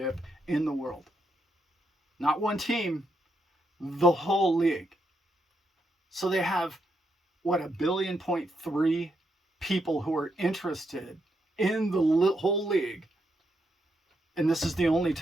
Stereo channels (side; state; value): both; normal; correlation 0.80